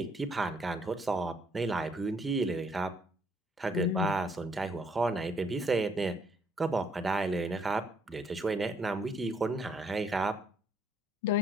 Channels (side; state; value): both; normal; correlation 0.68